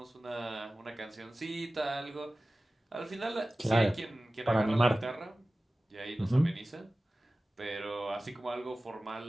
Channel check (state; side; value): normal; both; correlation 0.96